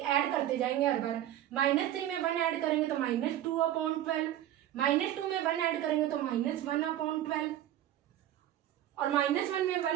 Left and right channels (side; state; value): left; quieter; 12.5 dB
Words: ऐड करते जाएंगे हर बार। -3 में 1 ऐड करेंगे तो -2/12, -2 में 1 ऐड करेंगे तो -1/12, और -1 में